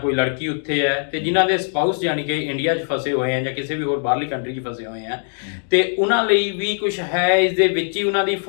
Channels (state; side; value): silent; right; 57 dB below the other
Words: ਲੜਕੀ ਉੱਥੇ ਹੈ, ਤੇ ਜਿਨ੍ਹਾਂ ਦੇ ਸਪਾਊਸ ਯਾਨੀ ਕਿ ਇੰਡੀਆ 'ਚ ਫਸੇ ਹੋਏ ਆ ਜਾਂ ਕਿਸੇ ਵੀ ਹੋਰ ਬਾਹਰਲੀ ਕੰਟਰੀ 'ਚ ਫਸੇ ਹੋਏ ਆ, ਤੇ ਉਹਨਾਂ ਲਈ ਵੀ ਕੁਝ ਹੈ ਇਸ ਦੇ ਵਿੱਚ ਹੀ ਉਹਨਾਂ ਦੀ